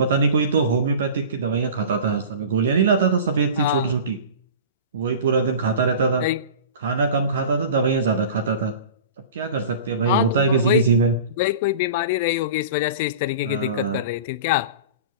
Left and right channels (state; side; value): inverted; both; correlation -0.36